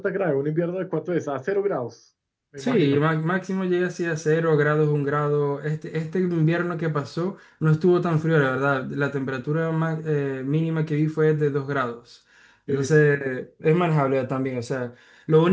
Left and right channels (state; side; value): identical; both; correlation 1.00